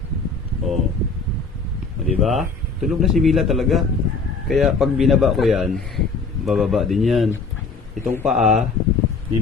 O, diba? Tulog na si Mila talaga. Kaya pag binaba ko yan, bababa din yan. Itong paa ni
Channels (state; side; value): quieter; right; 4.3 dB